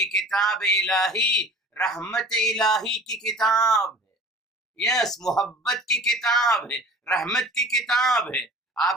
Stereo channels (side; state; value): both; normal; correlation 0.44